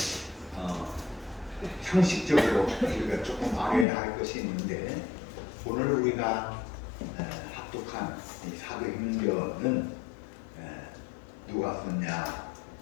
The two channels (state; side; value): drops out; right; at 3.9 s